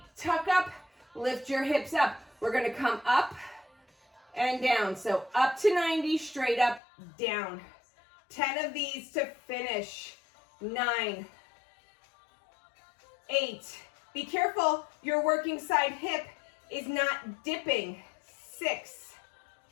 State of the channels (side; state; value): right; drops out; at 6.8 s